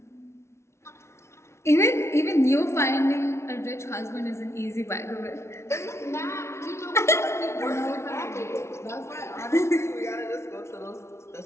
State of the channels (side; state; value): right; late; 0.13 ms